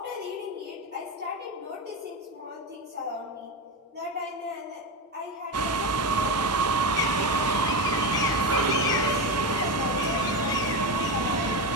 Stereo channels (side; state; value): both; normal; correlation 0.16